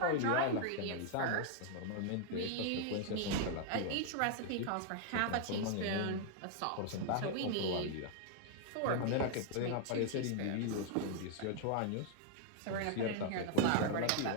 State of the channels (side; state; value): both; different; correlation 0.00